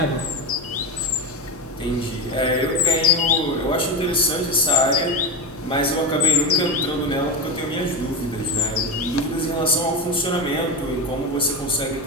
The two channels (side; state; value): both; normal; correlation 0.17